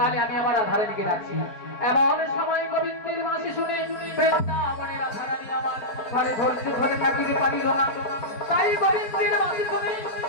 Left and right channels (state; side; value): late; right; 4.5 ms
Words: আমি আবার রাধারানীকে ডাকছি। এমন সময় গোবিন্দের বাঁশি শুনে বৃন্দাবনে রাধারানী আমার ঘরে ধরছে, ঘরে থাকিতে পারিল না। তাই গোবিন্দের বাঁশি শুনে